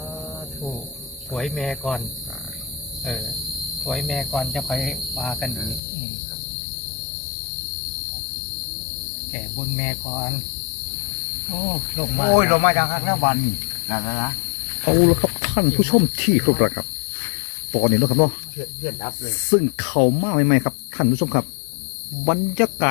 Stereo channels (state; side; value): drops out; right; at 5.8 s